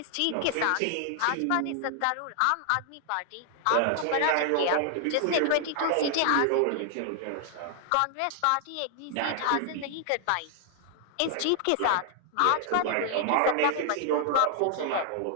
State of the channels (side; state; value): both; different; correlation 0.00